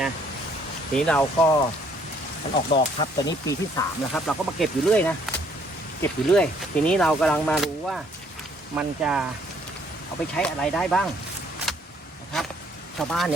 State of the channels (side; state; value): both; normal; correlation 0.64